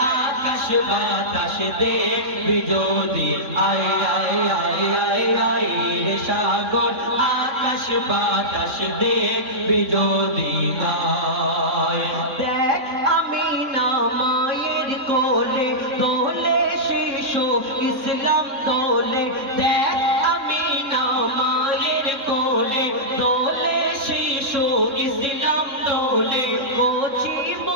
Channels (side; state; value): left; late; 3.7 ms